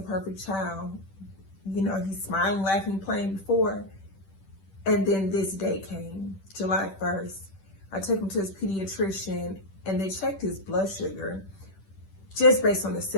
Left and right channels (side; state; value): right; late; 10 ms